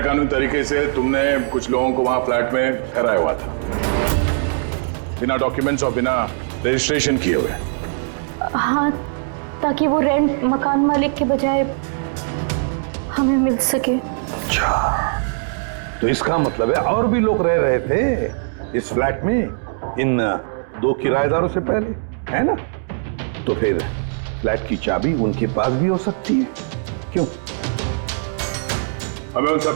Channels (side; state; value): left; silent; 65 dB below the other